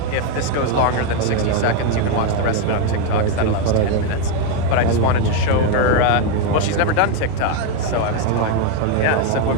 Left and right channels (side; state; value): both; different; correlation 0.01